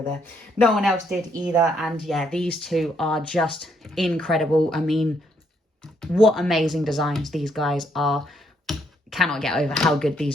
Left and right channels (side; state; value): both; normal; correlation 0.73